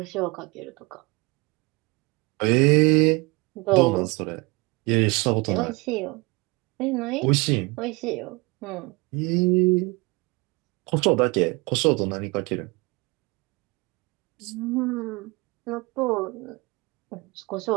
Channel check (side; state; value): left; quieter; 26.0 dB